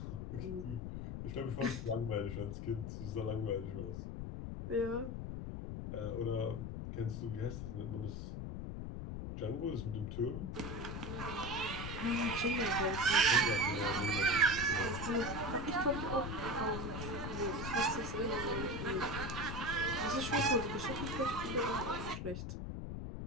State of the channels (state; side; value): noise; left; rumble, 5 dB below the sound